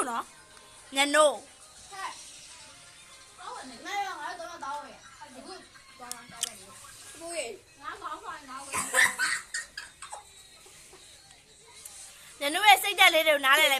呢？你喏。ညနိုးရဲ့စိတ်တက်လေးတွေကိုနားလည်လို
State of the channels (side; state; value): both; identical; correlation 1.00